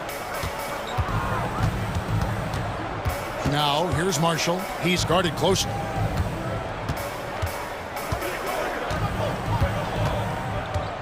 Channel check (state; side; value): identical; both; correlation 1.00